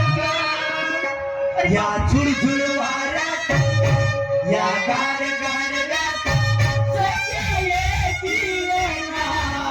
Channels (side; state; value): both; identical; correlation 1.00